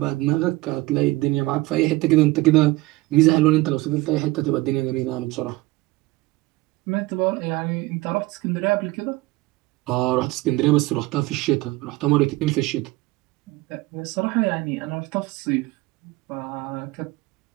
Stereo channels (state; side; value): quieter; left; 19.9 dB